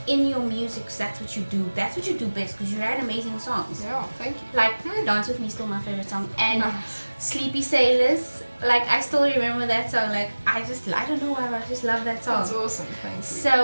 in your music, 'cause that's what you do. That's what you do best, because you write amazing songs. Yeah, thank you. Like Dance With Me is still my favorite song, and Nice. Sleepy Sailors, like I still remember that song. Like I don't know why, but I just love that song. That's awesome, thank you.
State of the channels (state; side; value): inverted; both; correlation -1.00